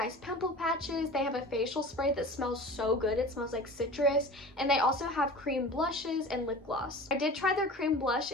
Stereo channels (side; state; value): both; normal; correlation 0.37